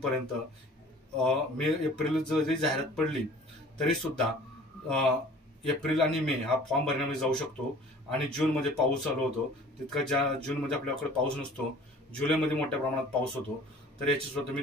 एप्रिल जरी जाहिरात पडली तरी सुद्धा एप्रिल आणि मे हा फॉर्म भरण्यामध्ये जाऊ शकतो आणि जूनमध्ये पाऊस चालू होतो, तितका ज्या जूनमध्ये आपल्याकडे पाऊस नसतो, जुलैमध्ये मोठ्या प्रमाणात पाऊस होतो, तर याची सुद्धा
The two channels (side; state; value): both; normal; correlation 0.48